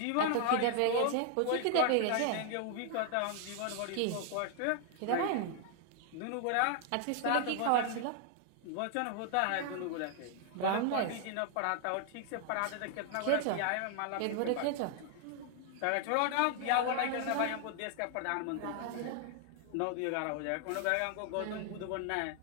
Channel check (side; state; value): both; different; correlation 0.00